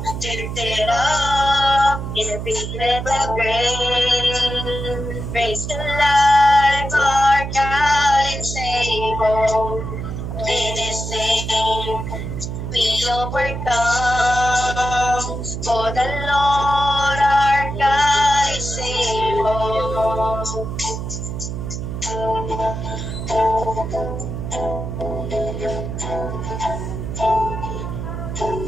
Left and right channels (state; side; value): noise; right; hum, 5 dB below the sound